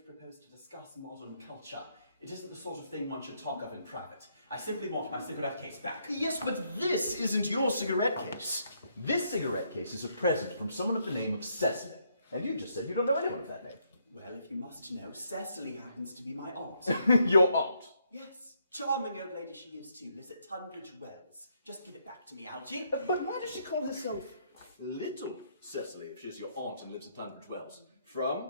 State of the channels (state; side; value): inverted; both; correlation -0.74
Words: propose to discuss modern culture. It isn't the sort of thing one should talk of in private. I simply want my cigarette case back. Yes, but this isn't your cigarette case. This cigarette case is a present from someone of the name of Cecily. And you just said you don't know anyone of that name. Well, if you must know, Cecily happens to be my aunt. Your aunt? Yes, charming old lady she is too, lives at Tunbridge Wells. Just give it back to me, Algy. But why does she call herself Little Cecily if she's your aunt and lives at Tunbridge Wells?